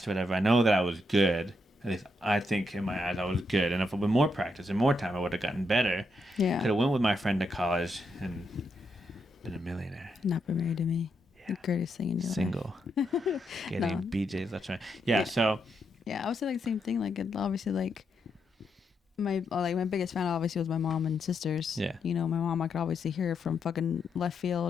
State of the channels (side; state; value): both; normal; correlation 0.81